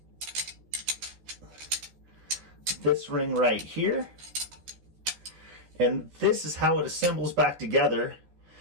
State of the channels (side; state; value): left; late; 14 ms